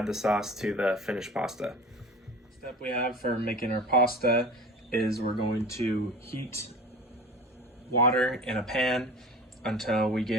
the sauce to the finished pasta. Step we have for making our pasta is we're going to heat water in a pan until we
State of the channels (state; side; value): normal; both; correlation 0.37